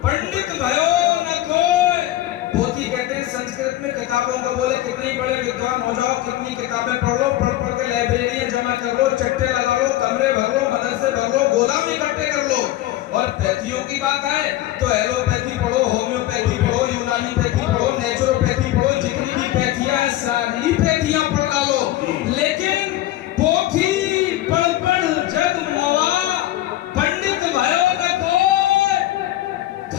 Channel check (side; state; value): right; quieter; 14.9 dB